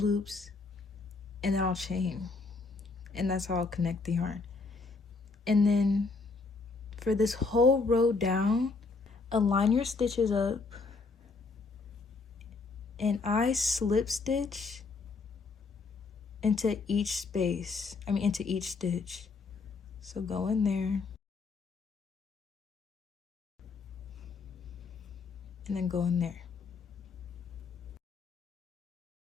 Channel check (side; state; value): right; quieter; 4.2 dB